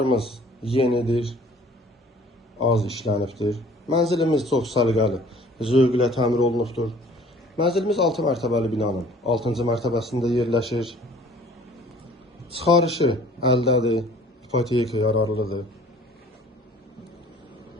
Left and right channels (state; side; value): normal; both; correlation 0.52